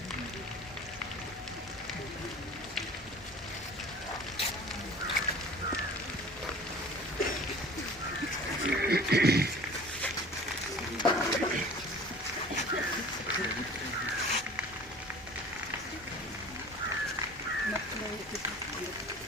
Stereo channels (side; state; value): both; normal; correlation 0.44